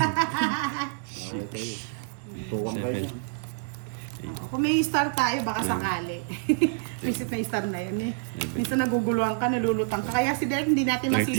Okay kayo. Tuwang kayo niya. Oo, kung may star tayo, baka sakali. Visit na yung star na yun eh. Minsan naguguluhan ka, nalulutang ka. Kaya si Derek hindi natin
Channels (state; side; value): silent; left; digital silence